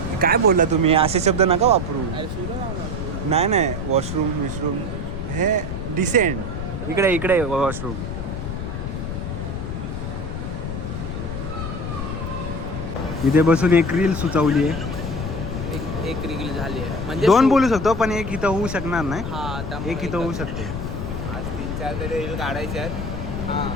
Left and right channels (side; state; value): left; noise; rumble, 5 dB below the sound